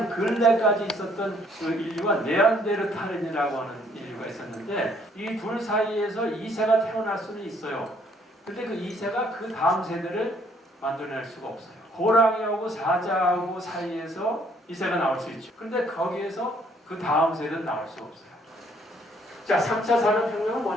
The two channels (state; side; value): normal; both; correlation 0.64